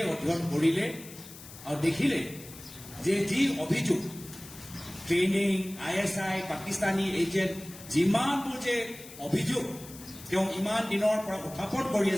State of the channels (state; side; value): noise; left; hiss, 16 dB below the sound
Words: অধ্যয়ন কৰিলে আৰু দেখিলে যে যি অভিযোগ ট্ৰেইনিং ISI পাকিস্তানী এজেণ্ট যিমানবোৰ যে অভিযোগ তেওঁ ইমান দিনৰ পৰা উত্থাপন কৰি